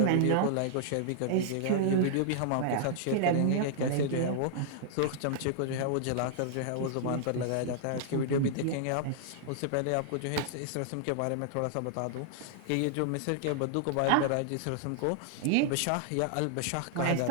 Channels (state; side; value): different; both; correlation -0.01